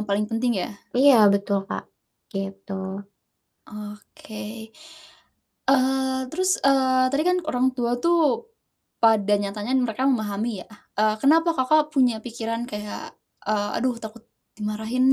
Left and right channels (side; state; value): both; identical; correlation 1.00